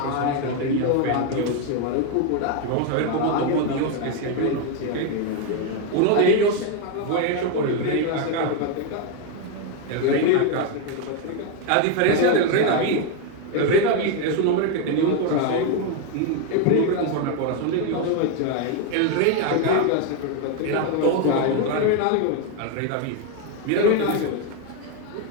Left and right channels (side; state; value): both; different; correlation 0.01